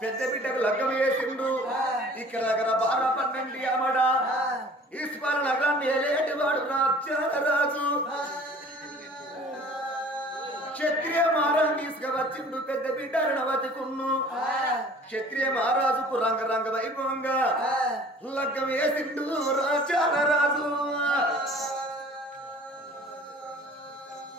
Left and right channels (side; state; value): both; normal; correlation 0.48